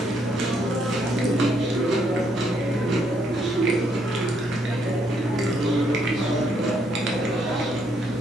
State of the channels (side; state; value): both; normal; correlation 0.72